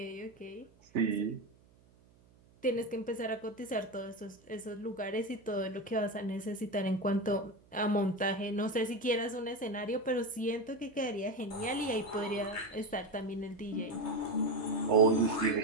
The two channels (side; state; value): right; noise; hum, 29 dB below the sound